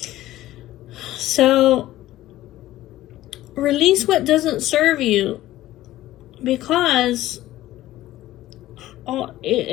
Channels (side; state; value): right; quieter; 15.2 dB